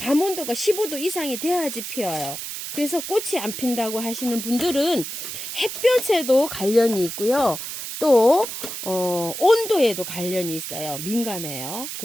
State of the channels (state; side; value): noise; right; hiss, 7 dB below the sound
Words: 온도가 15도 이상이 돼야지 피어요. 그래서 꽃이 안 핀다고 하시는 분들은 햇볕에도 관련이 있고요. 또 온도에도 관련이 있어요. 민감해요.